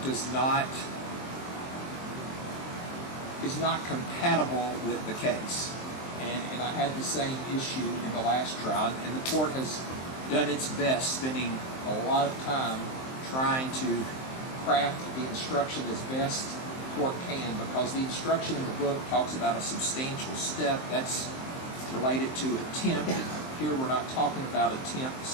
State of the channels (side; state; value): right; late; 23 ms